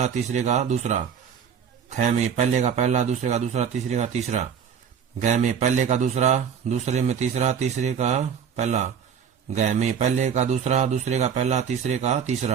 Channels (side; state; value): left; quieter; 7.6 dB